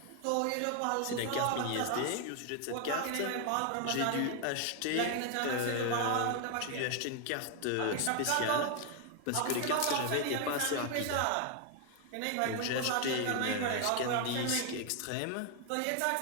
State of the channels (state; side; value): different; both; correlation 0.01